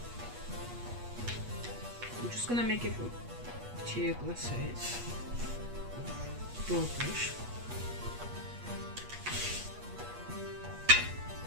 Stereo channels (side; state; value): left; late; 8.3 ms